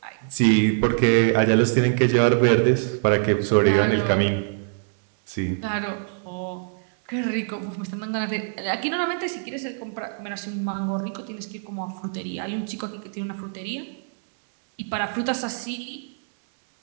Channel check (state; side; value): silent; left; digital silence